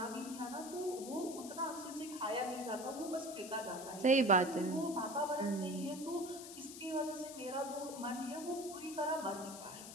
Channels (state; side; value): noise; left; hiss, 12 dB below the sound